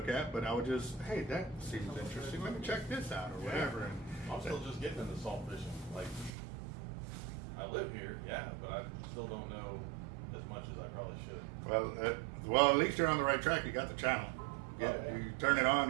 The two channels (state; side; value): drops out; left; at 6.3 s